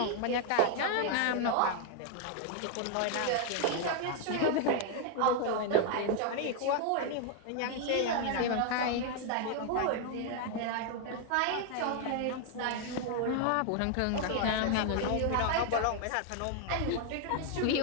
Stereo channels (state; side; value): different; both; correlation 0.00